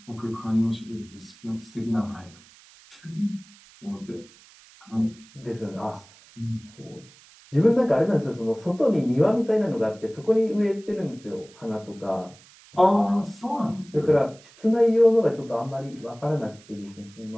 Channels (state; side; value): noise; right; hiss, 25 dB below the sound